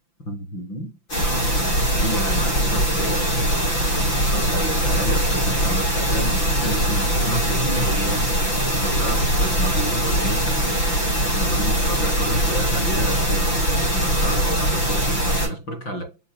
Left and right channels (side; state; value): right; late; 5.9 ms